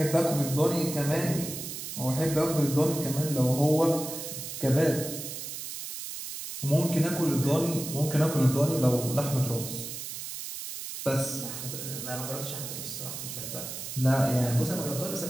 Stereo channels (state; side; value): noise; right; hiss, 8 dB below the sound